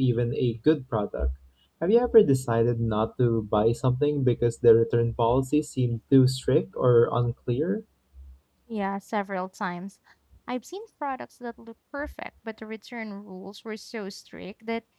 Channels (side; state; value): both; identical; correlation 1.00